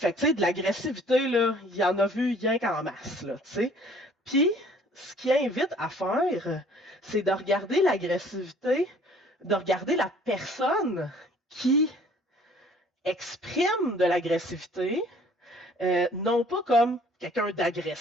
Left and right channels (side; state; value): both; normal; correlation 0.55